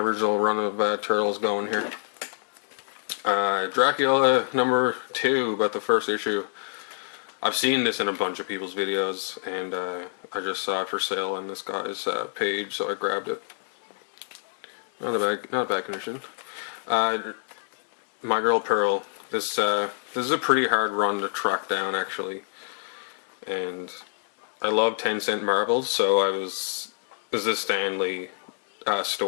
run of Turtles going here. Dracula number 2, but the first issue. I've seen this in a bunch of people's videos, and I just saw it for sale on this guy's page, so I grabbed it. Not a bad condition. My Girl Pearl. This is a pretty hard run to track down actually, and I love 10-cent marbles, so this is a Stan Lee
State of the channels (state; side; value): silent; right; digital silence